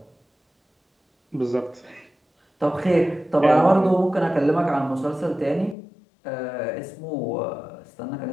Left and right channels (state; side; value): drops out; right; at 5.8 s